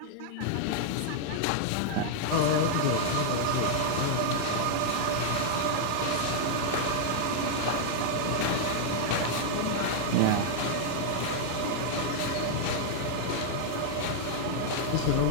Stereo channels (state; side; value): different; both; correlation -0.01